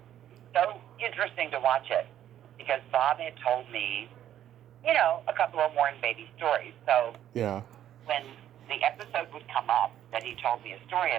so interesting to watch it because Bob had told me, a couple of Warren Beatty stories. So when the episode would come up that he told me a story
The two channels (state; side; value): quieter; left; 11.3 dB